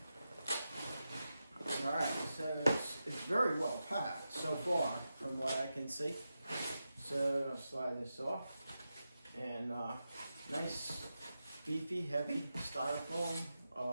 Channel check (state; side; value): inverted; both; correlation -0.90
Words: All right, so it's very well packed so far from what I can see. So I'll slide this off, and nice, beefy, heavy styrofoam